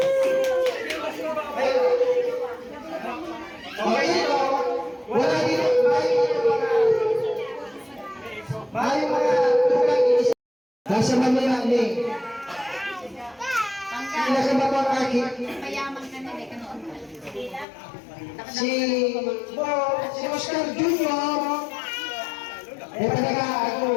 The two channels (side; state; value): right; drops out; at 17.7 s